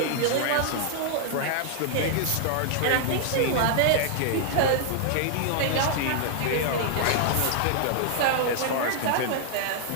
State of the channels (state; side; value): different; both; correlation -0.01